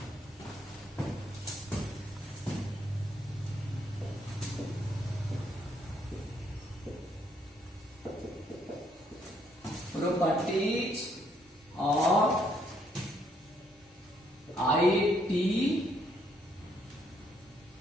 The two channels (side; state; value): both; normal; correlation 0.70